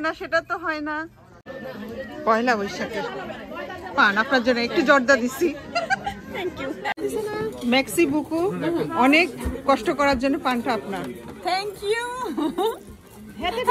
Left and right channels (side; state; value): both; identical; correlation 1.00